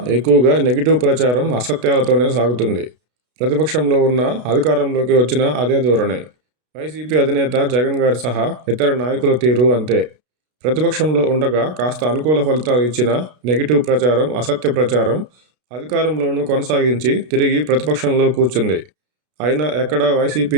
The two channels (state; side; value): late; left; 32 ms